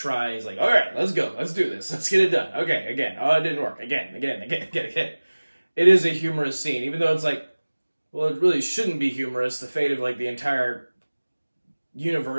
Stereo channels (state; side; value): inverted; both; correlation -1.00